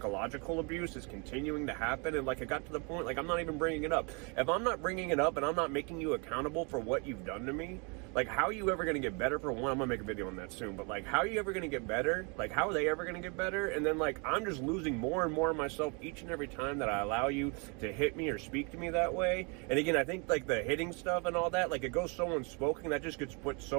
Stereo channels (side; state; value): left; quieter; 33.2 dB